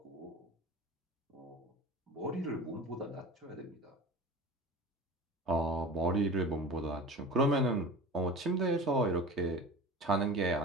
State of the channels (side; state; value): both; normal; correlation 0.35